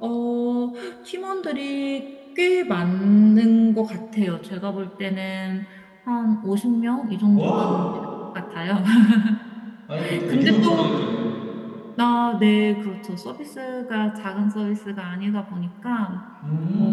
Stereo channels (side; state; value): both; identical; correlation 1.00